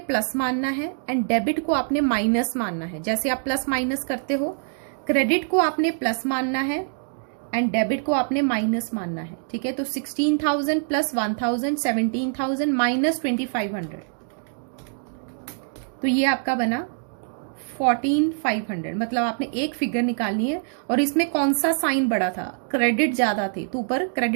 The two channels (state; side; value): silent; left; digital silence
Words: मानना है एंड डेबिट को आपने माइनस मानना है। जैसे आप प्लस माइनस करते हो, क्रेडिट को आपने प्लस मानना है एंड डेबिट को आपने माइनस मानना है। ठीक है, तो 16,000 प्लस 1,000 17,000 माइनस 2,500, तो ये आपका बना 14,500। मतलब आपने एक फिगर निकालनी है और इसमें कौन सा साइन बड़ा था, क्रेडिट ज्यादा थे, तो ऊपर